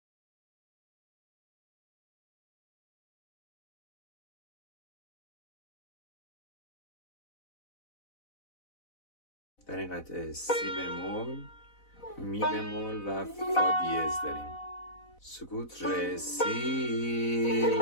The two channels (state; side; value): late; right; 4.0 ms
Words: در این قطعه سی بمول، می بمول و فا دیز داریم. سکوت ر سی